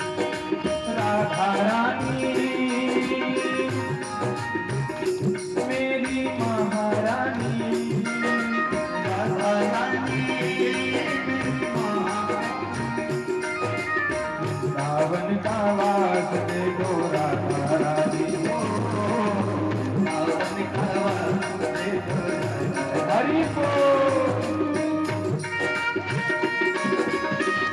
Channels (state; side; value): identical; both; correlation 1.00